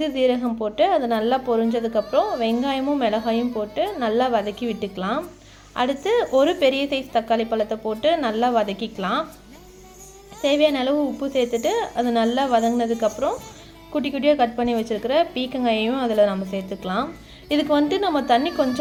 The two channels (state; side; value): identical; both; correlation 1.00